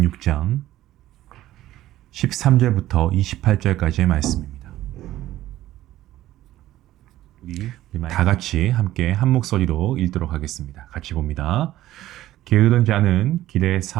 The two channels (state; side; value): quieter; left; 14.5 dB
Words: 13절부터 28절까지의 말씀입니다. 우리 다 같이 함께 한 목소리로 읽도록 하겠습니다. 같이 봅니다. 게으른 자는 길에